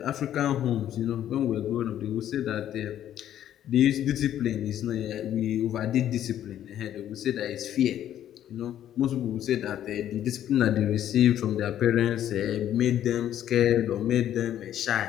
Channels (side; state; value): right; quieter; 11.2 dB